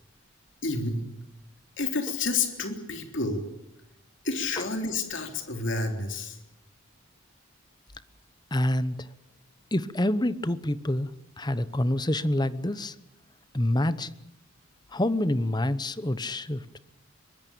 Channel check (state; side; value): normal; both; correlation 0.73